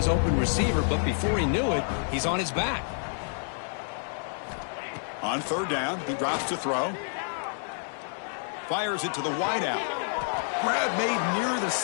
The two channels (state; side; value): silent; right; digital silence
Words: open receiver, but before he knew it, he's on his back. On third down, he drops to throw. Fires it to the wideout. Grab made near the